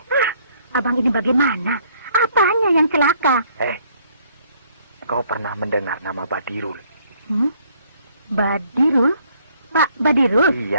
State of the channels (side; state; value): both; inverted; correlation -0.65